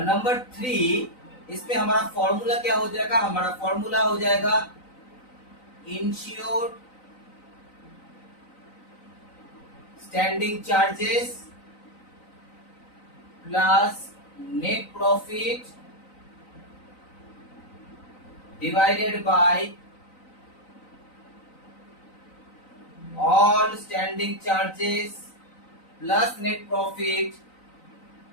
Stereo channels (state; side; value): late; right; 3.9 ms